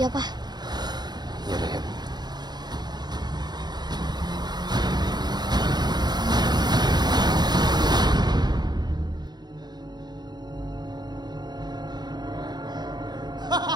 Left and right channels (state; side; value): late; left; 0.20 ms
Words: Pak. Yaudah, yuk.